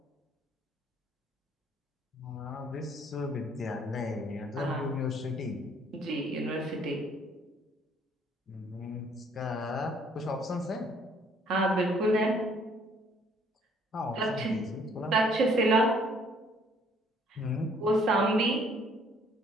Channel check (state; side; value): normal; both; correlation 0.62